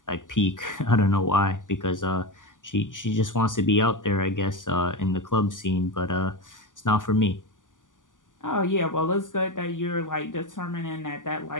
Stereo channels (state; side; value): late; right; 0.88 ms